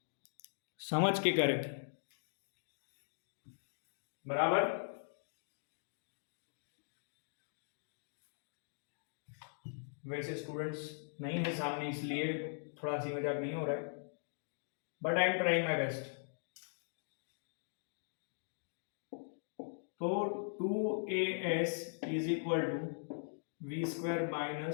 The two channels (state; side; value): silent; right; digital silence